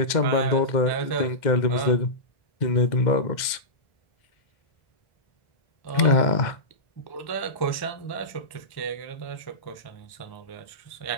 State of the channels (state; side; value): late; right; 2.0 ms